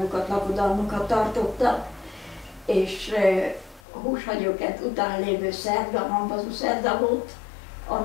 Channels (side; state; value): right; drops out; at 3.8 s